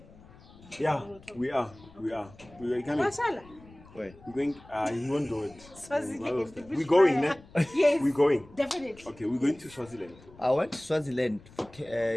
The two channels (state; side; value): noise; left; rumble, 23 dB below the sound